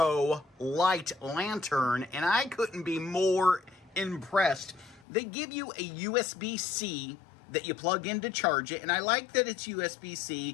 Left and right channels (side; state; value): right; drops out; at 5.1 s